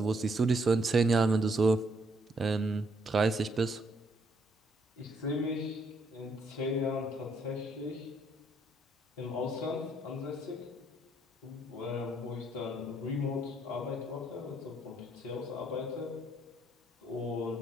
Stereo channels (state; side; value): normal; both; correlation 0.71